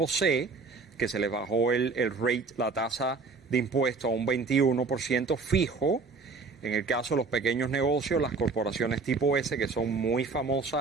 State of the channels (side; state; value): left; quieter; 4.4 dB